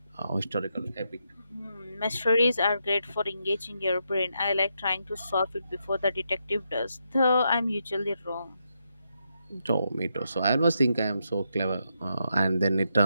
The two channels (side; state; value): both; inverted; correlation -0.82